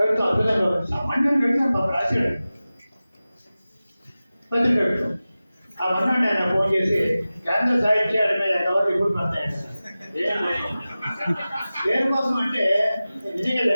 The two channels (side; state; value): both; inverted; correlation -0.96